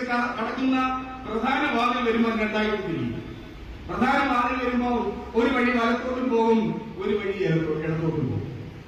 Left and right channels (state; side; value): identical; both; correlation 1.00